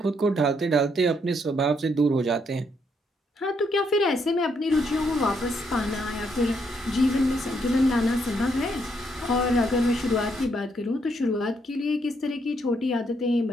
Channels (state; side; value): normal; both; correlation 0.74